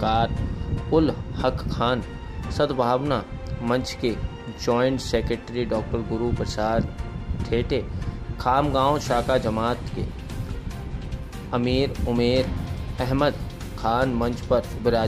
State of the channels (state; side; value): identical; both; correlation 1.00